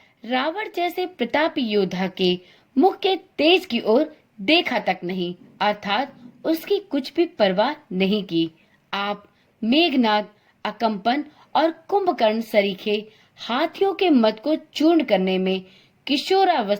रावण जैसे प्रतापी योद्धा के मुख के तेज की ओर देखा तक नहीं, अर्थात उसकी कुछ भी परवाह नहीं की। आप मेघनाद, अकंपन और कुंभकर्ण सरीखे हाथियों के मद को चूर्ण करने में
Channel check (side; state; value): both; identical; correlation 1.00